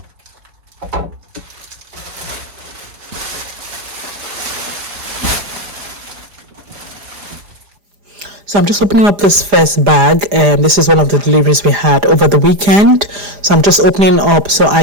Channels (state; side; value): late; left; 4.9 ms